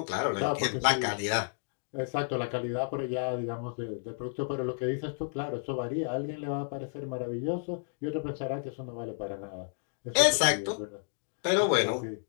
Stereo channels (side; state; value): right; silent; digital silence